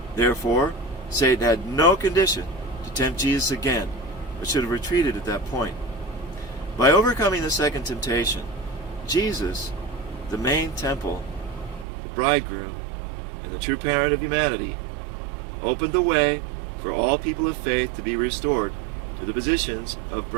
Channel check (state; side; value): drops out; left; at 11.9 s